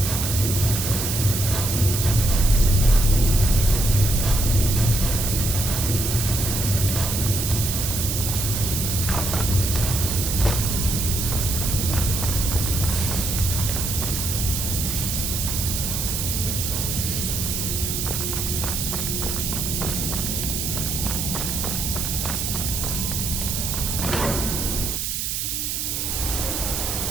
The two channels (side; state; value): right; noise; hiss, 2 dB below the sound